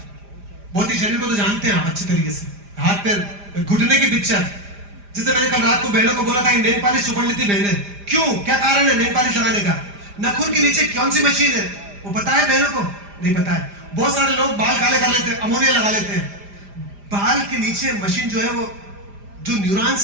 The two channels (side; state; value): left; late; 5.0 ms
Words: भौतिक शरीर को तो जानते हैं आप अच्छे तरीके से, हाथ पैर घुटने की पिक्चर। जैसे मैंने कल रात को बहनों को बोला था कि नेल पॉलिश चुपड़ लेती बहनें, क्यों, क्या कारण है नेल पॉलिश लगाने का? नाखून के नीचे कौन सी मशीन है वो पता है बहनों को? नहीं पता है। बहुत सारे लोग बाल काले कर लेते हैं, अमोनिया लगा लेते हैं। बाल के नीचे मशीन जो है, वो जो